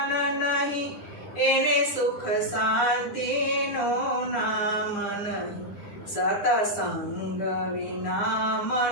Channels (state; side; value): late; right; 9.9 ms